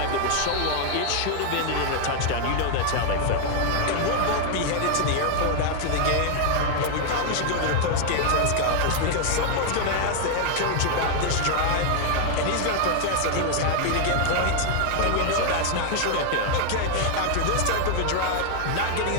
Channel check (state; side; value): different; both; correlation 0.00